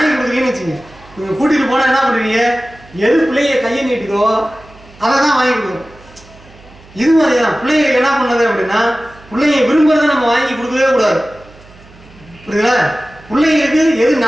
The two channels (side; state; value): right; noise; hum, 24 dB below the sound